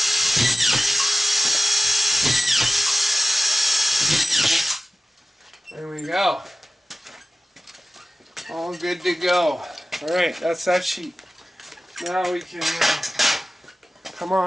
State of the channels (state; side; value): normal; both; correlation 0.97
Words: There we go. All good to go. Alright, that's that sheet. Now we can come